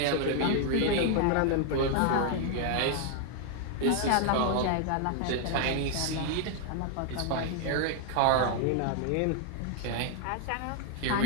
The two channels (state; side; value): different; both; correlation -0.01